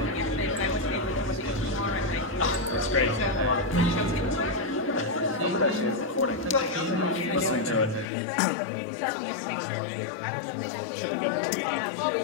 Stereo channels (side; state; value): right; drops out; at 8.1 s